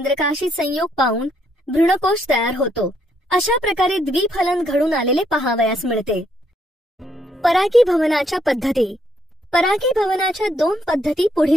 संयोग पावून भ्रूणकोश तयार होतो. अशा प्रकारे द्विफलन घडून आलेले पाहावयास मिळते. परागीभवनाच्या पद्धती. परागीभवनाच्या 2 पद्धती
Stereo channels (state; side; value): normal; both; correlation 0.73